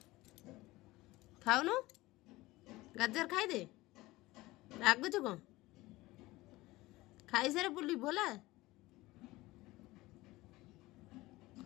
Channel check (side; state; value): right; quieter; 19.3 dB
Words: ଖାଉନୁ? ଗାଜର ଖାଇଦେ। ରାଗୁଛୁ କ'ଣ? ଖାଇସାରେ ବୁଲିବୁ ହେଲା।